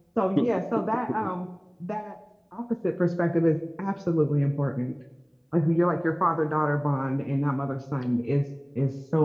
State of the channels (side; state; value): both; identical; correlation 1.00